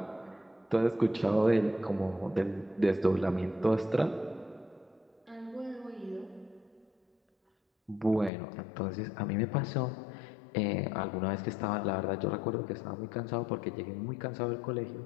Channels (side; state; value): right; drops out; at 8.3 s